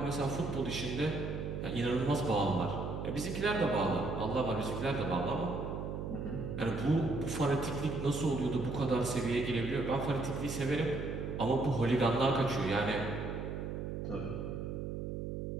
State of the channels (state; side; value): noise; right; hum, 4 dB below the sound